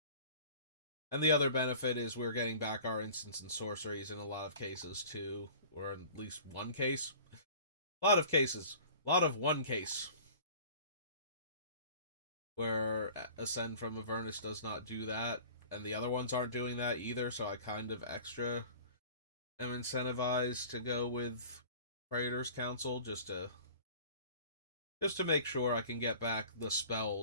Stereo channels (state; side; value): inverted; both; correlation -0.44